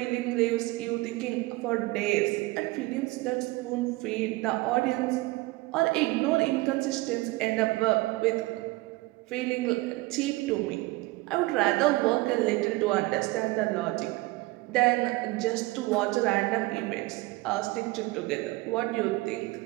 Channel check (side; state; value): left; quieter; 21.3 dB